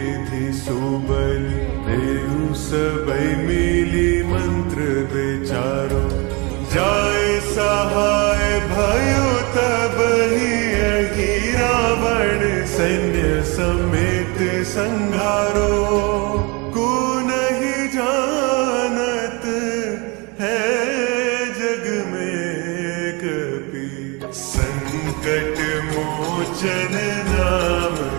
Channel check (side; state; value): left; quieter; 28.5 dB